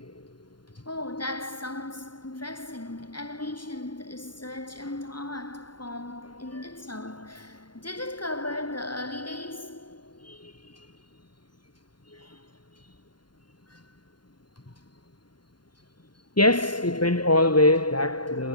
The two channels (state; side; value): late; right; 0.71 ms